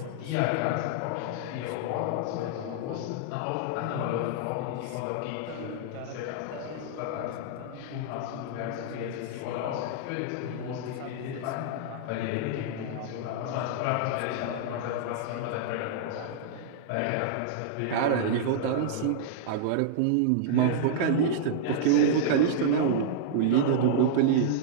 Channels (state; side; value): different; both; correlation -0.01